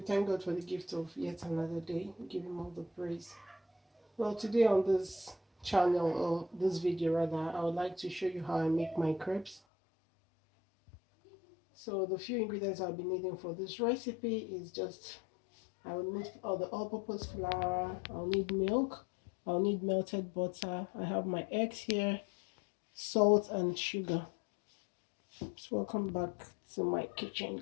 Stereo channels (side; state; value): right; drops out; at 9.6 s